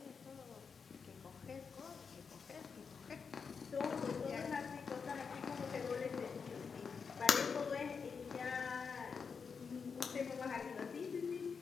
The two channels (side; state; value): right; quieter; 5.7 dB